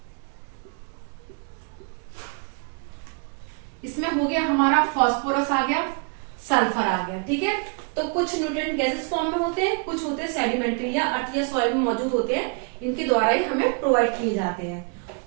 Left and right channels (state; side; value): quieter; left; 36.9 dB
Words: इसमें हो गया हमारा फास्फोरस आ गया, सल्फर आ गया। ठीक है, तो कुछ न्यूट्रिएंट गैसेस फॉर्म में होते हैं, कुछ होते हैं सेडिमेंट्री या अर्थ या सॉइल में मौजूद होते हैं, इनके द्वारा ही हमें प्रोवाइड किए जाते हैं।